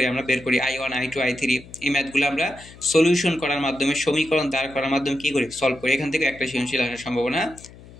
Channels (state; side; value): noise; left; hum, 20 dB below the sound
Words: আমরা বের করি I1, I2, I3, এই ম্যাথগুলো আমরা সলিউশন করার মাধ্যমে, সমীকরণ দাঁড় করার মাধ্যমে কী করি, সলভ করি। এখান থেকে একটা সৃজনশীল আসার সম্ভাবনা